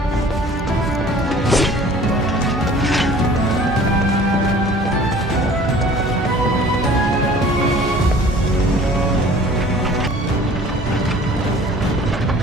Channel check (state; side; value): normal; both; correlation 0.49